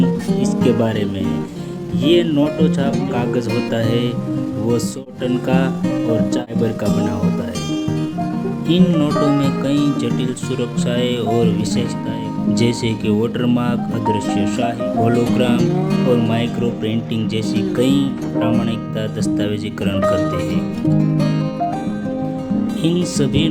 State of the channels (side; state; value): both; identical; correlation 1.00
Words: इसके बारे में। ये नोटो छाप कागज़ होता है, वो 100 टन का और फाइबर का बना होता है। इन नोटों में कई जटिल सुरक्षाएं और विशेषताएं जैसे कि वाटरमार्क, अदृश्य शाही, होलोग्राम और माइक्रो प्रिंटिंग जैसी कई प्रामाणिकता दस्तावेजीकरण करते हैं। इन सभी